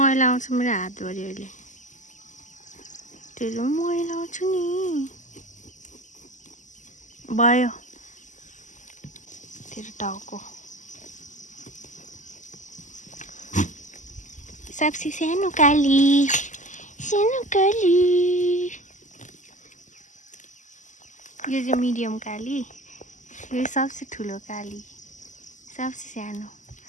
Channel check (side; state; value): right; late; 0.36 ms